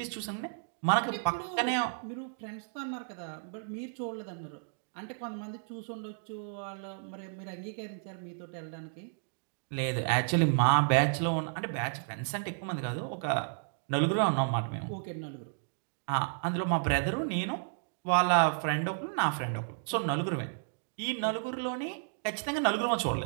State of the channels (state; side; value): silent; left; digital silence